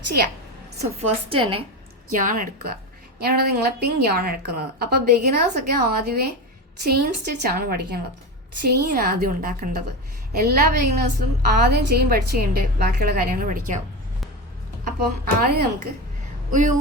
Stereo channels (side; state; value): both; normal; correlation 0.21